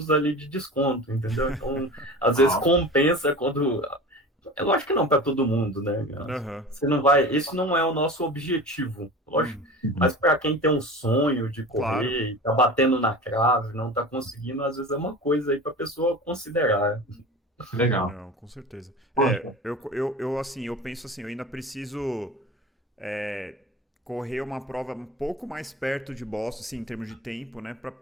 ali de desconto, entendeu? Então, às vezes compensa quando... É lógico que não para todo mundo, né? Você não vai... Esse não é o nosso objetivo, lógico. Mas para quem tem um sonho de correr, tá batendo na trave, não tá conseguindo, às vezes é uma coisa aí para a pessoa considerar. Legal. Não, com certeza. Eu penso assim, eu ainda preciso correr uma prova um pouco mais perto de Boston, assim, em termos de tempo, né? Para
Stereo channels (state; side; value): normal; both; correlation 0.35